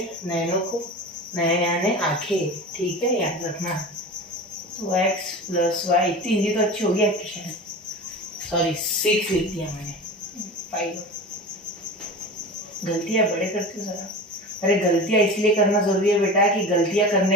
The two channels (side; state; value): both; normal; correlation 0.32